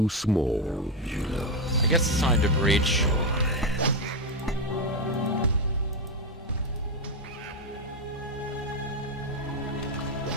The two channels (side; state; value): both; normal; correlation 0.08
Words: small. I guess it's time to breach.